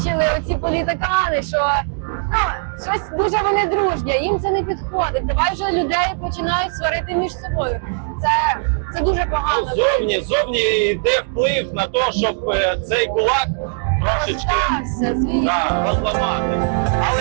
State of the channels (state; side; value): silent; left; digital silence